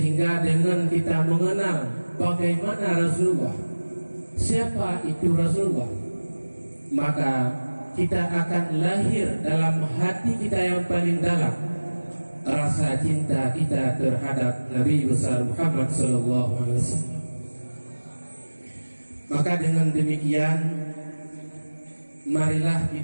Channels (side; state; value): both; inverted; correlation -1.00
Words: dengan kita mengenal bagaimana Rasulullah, siapa itu Rasulullah, maka kita akan lahir dalam hati kita yang paling dalam rasa cinta kita terhadap Nabi besar Muhammad sallallahu alaihi wasallam. Maka dengan demikian, marilah